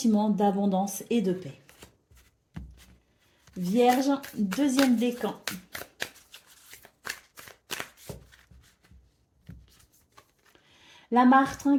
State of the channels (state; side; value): identical; both; correlation 1.00